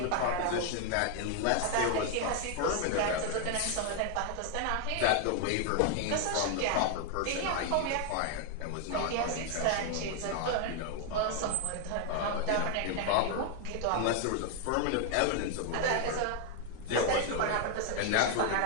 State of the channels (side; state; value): both; different; correlation 0.00